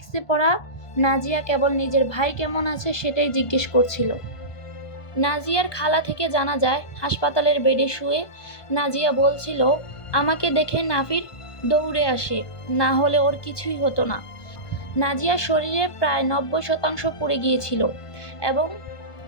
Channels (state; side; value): late; right; 1.5 ms